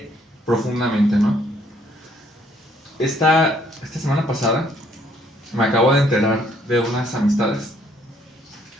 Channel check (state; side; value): normal; both; correlation 0.65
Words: profundamente, ¿no? Esta semana pasada me acabo de enterar de unas amistades.